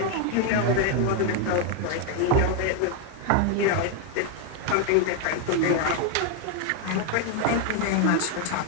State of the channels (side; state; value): both; different; correlation 0.01